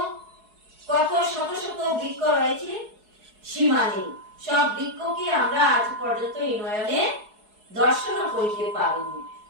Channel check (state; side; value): late; left; 4.7 ms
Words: কত শত শত বৃক্ষ রয়েছে, সীমা নেই। সব বৃক্ষকে আমরা আজ পর্যন্ত এই নয়নে দর্শন করতে পারিনি।